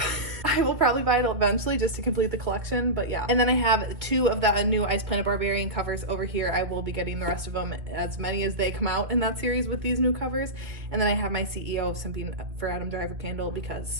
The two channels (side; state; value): left; late; 2.5 ms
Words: I will probably buy it eventually just to complete the collection, but yeah. And then I have 2 of the new Ice Planet Barbarian covers over here. I will be getting the rest of them, as many as they come out in that series with these new covers. And then I have my CEO of Simping for Adam Driver candle